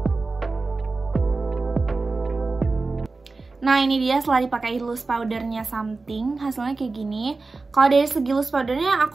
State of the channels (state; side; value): quieter; left; 3.8 dB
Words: Nah, ini dia setelah dipakai loose powdernya Something, hasilnya kayak gini. Kalau dari segi loose powdernya